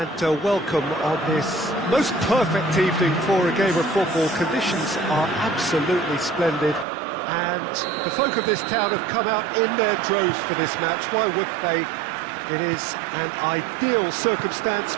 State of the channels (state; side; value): drops out; left; at 6.9 s